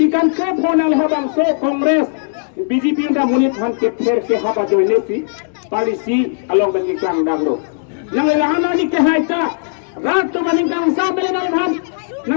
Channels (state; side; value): silent; right; digital silence